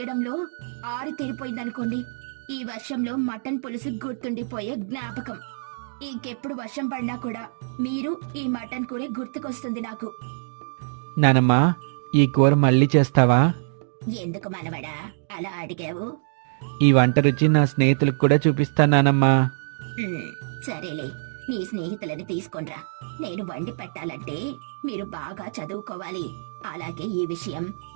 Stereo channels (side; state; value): left; silent; digital silence